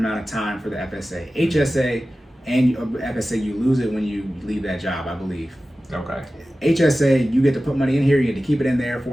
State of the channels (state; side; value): normal; both; correlation 0.95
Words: of time for the FSA. HSA and FSA, you lose it when you leave that job, I believe. Okay. HSA, you get to put money in here, you get to keep it in there